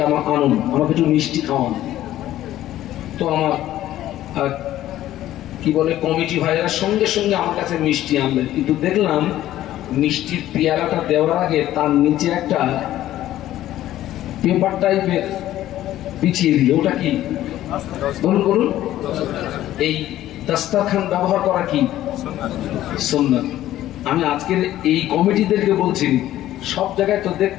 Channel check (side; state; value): right; quieter; 13.6 dB